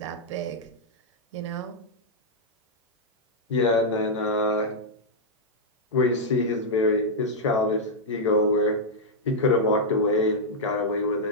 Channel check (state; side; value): normal; both; correlation -0.05